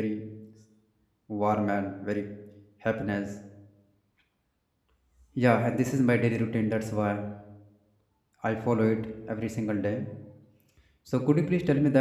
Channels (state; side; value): identical; both; correlation 1.00